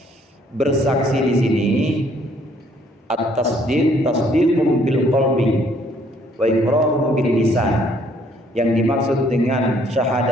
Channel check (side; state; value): both; normal; correlation 0.64